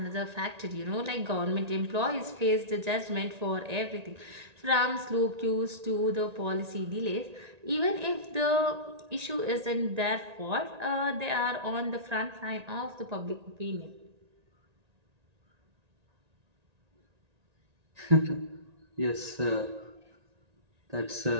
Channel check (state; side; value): late; left; 1.9 ms